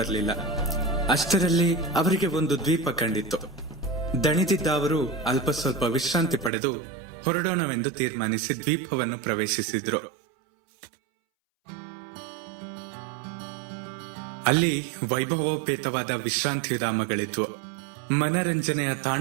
ಅಷ್ಟರಲ್ಲಿ ಅವರಿಗೆ ಒಂದು ದ್ವೀಪ ಕಂಡಿತ್ತು. ದಣಿದಿದ್ದ ಅವರು ಅಲ್ಪ ಸ್ವಲ್ಪ ವಿಶ್ರಾಂತಿ ಪಡೆದು ಹೊರಡೋಣವೆಂದು ತೀರ್ಮಾನಿಸಿ ದ್ವೀಪವನ್ನು ಪ್ರವೇಶಿಸಿದ್ರು. ಅಲ್ಲಿ ವೈಭವೋಪೇತವಾದ ವಿಶ್ರಾಂತಿ ಧಾಮಗಳಿದ್ವು. ಮನರಂಜನೆಯ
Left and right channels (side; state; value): left; drops out; at 6.5 s